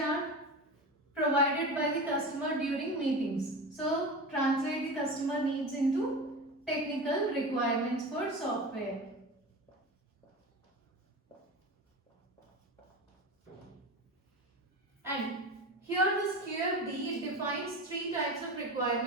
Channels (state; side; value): normal; both; correlation 0.28